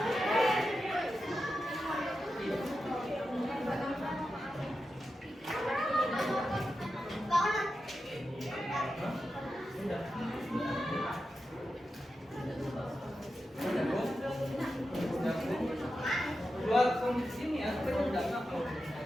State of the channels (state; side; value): normal; both; correlation 0.90